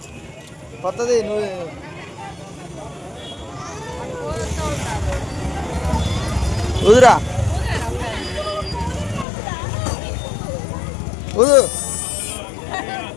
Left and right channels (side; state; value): right; drops out; at 9.2 s